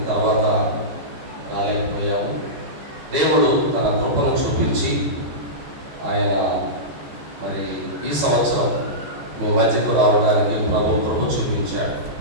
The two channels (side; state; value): left; late; 14 ms